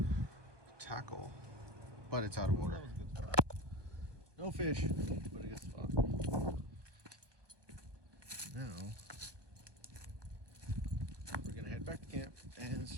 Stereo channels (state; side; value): late; left; 1.2 ms